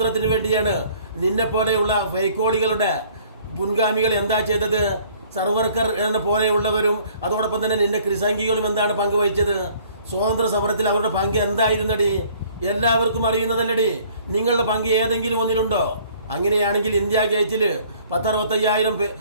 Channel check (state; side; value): inverted; both; correlation -0.56